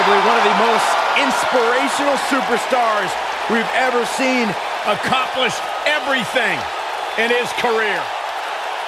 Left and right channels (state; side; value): identical; both; correlation 1.00